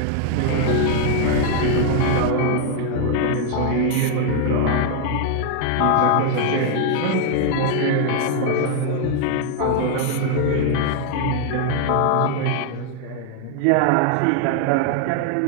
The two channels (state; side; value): different; both; correlation 0.00